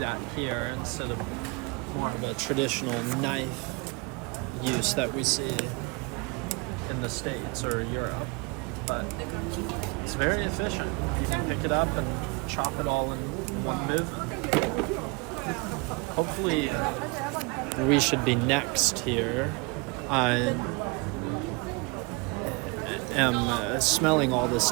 here instead of more of a traditional knife use that we see in the States or Europe. But it's very efficient. You can pick it up and chop it all in one movement. Hopefully we should be next here. I am smelling all this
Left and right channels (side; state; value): left; quieter; 28.8 dB